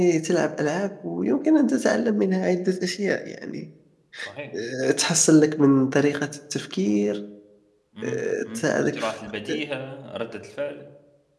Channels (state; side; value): identical; both; correlation 1.00